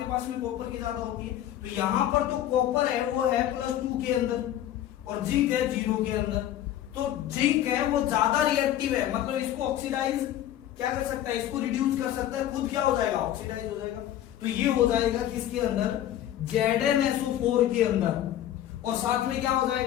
पास में कॉपर की ज्यादा होती है। तो यहां पर तो कॉपर है वो है +2 के अंदर और जिंक है 0 के अंदर। तो जिंक है वो ज्यादा रिएक्टिव है, मतलब इसको ऑक्सीडाइज क्या कर सकता है, इसको रिड्यूस कर सकता है, खुद क्या हो जाएगा, ऑक्सीडाइज हो जाएगा। तो ये हो जाएगा किसके अंदर, ZnSO4 के अंदर, और साथ में क्या हो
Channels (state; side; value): quieter; right; 12.1 dB